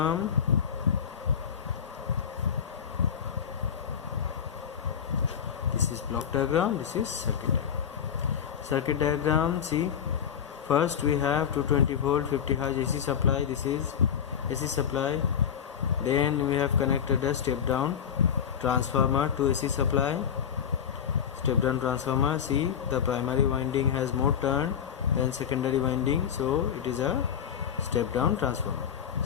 This is block diagram. This is circuit diagram. Circuit diagram. See, first we have 220 volt 50 Hz AC supply. This is AC supply. Then we have connected a step down transformer to AC supply. Step down transformer. See, the primary winding has more turn than secondary winding, so it is a step down transformer.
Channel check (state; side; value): quieter; right; 8.1 dB